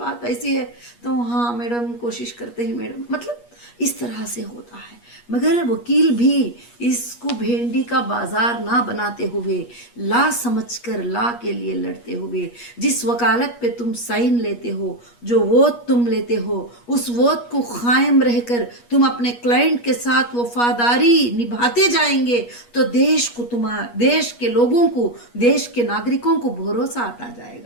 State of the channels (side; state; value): right; late; 8.4 ms